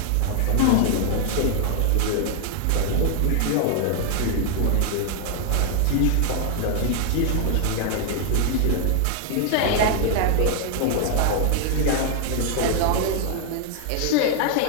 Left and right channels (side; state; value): both; different; correlation 0.00